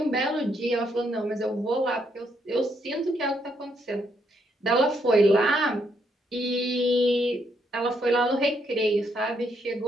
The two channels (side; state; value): both; normal; correlation 0.75